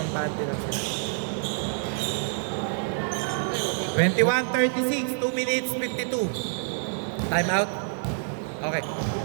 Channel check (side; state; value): left; silent; digital silence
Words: lang sila. 21-36, 2 minutes 52. Time out. Okay.